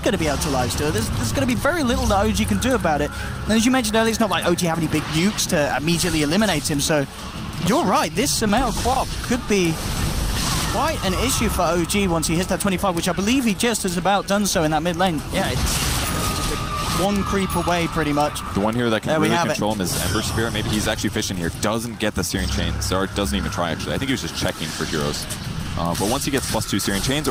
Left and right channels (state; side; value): identical; both; correlation 1.00